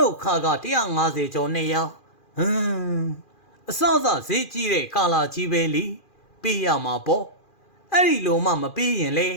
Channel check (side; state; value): right; late; 2.4 ms